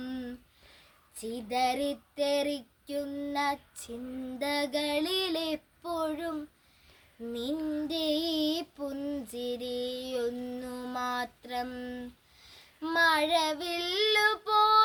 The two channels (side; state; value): both; identical; correlation 1.00